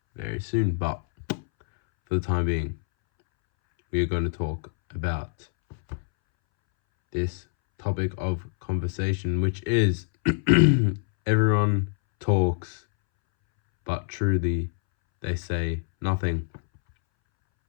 very soon, but for the time being, we are going to talk about this topic of conversation, which is everyone talks, but truly they say nothing.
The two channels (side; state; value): right; silent; 61 dB below the other